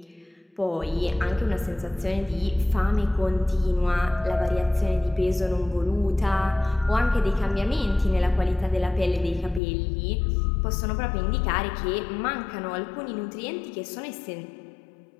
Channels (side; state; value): right; drops out; at 9.6 s